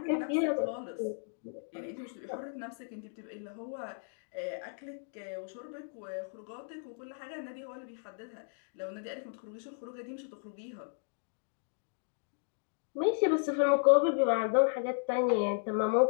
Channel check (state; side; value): silent; right; digital silence